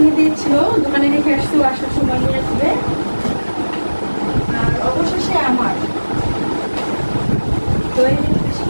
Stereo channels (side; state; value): both; inverted; correlation -1.00